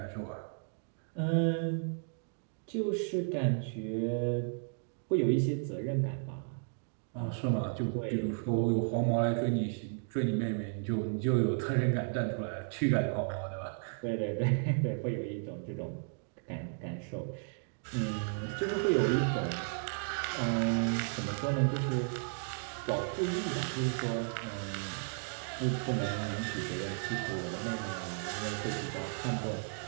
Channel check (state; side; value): silent; left; 55 dB below the other